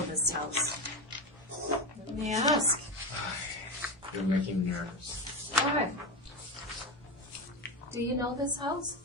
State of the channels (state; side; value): normal; both; correlation 0.18